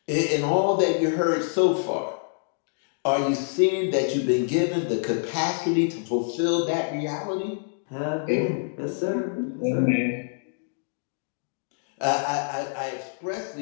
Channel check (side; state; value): right; silent; digital silence